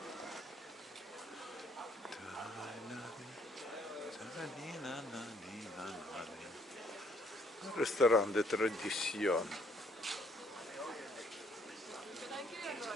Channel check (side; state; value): both; normal; correlation 0.65